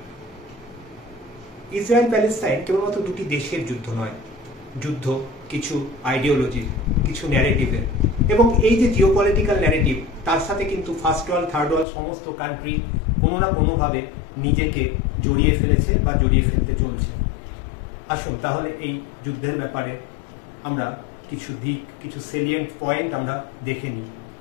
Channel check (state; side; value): drops out; right; at 11.9 s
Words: ইসরায়েল প্যালেস্তাইন কেবলমাত্র দুটি দেশের যুদ্ধ নয়, যুদ্ধ কিছু আইডিওলজির, কিছু ন্যারেটিভের, এবং এই যে জিওপলিটিক্যাল ন্যারেটিভ, তার সাথে কিন্তু ফার্স্ট ওয়ার্ল্ড, থার্ড ওয়ার্ল্ড সমস্ত কান্ট্রি কোনো না কোনোভাবে নিজেকে জড়িয়ে ফেলেছে বা জড়িয়ে ফেলতে চলছে। আসুন তাহলে এই যুদ্ধের ব্যাপারে আমরা কিছু দিক, কিছু সেলিয়েন্ট পয়েন্ট আমরা দেখে নিই।